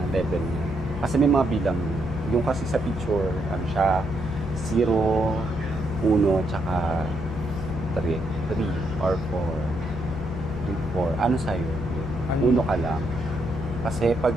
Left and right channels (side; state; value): both; normal; correlation 0.77